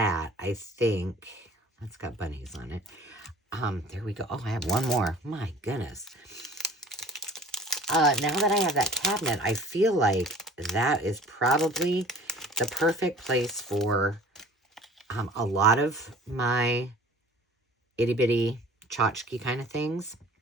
I think that's got bunnies on it. There we go. Oh, I have one more. My goodness. Now that I have that cabinet, I feel like that is probably the perfect place for a lot of my itty-bitty tchotchke kind of things.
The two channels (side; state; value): both; normal; correlation 0.47